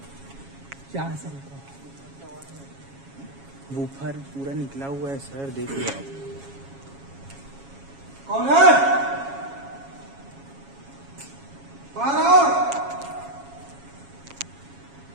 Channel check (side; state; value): left; late; 7.3 ms